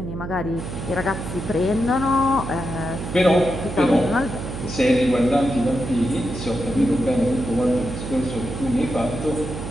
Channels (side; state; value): right; noise; hum, 7 dB below the sound